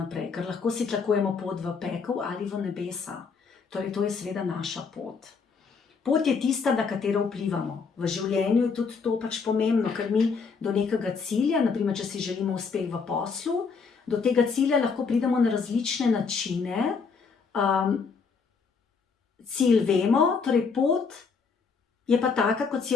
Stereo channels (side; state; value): right; quieter; 5.3 dB